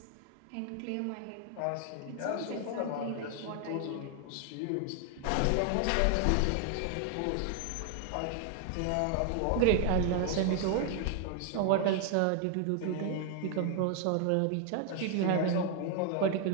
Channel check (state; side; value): different; both; correlation 0.00